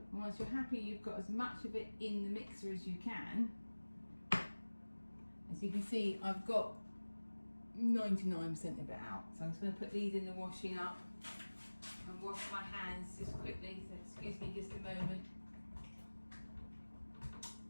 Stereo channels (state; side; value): inverted; both; correlation -1.00